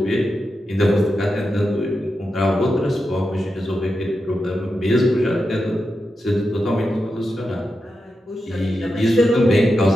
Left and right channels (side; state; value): both; normal; correlation 0.89